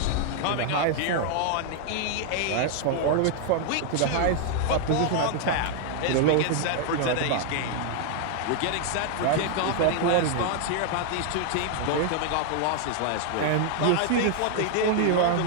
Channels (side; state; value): both; different; correlation 0.00